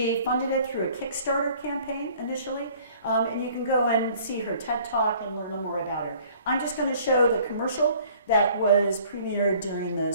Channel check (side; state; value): both; inverted; correlation -0.55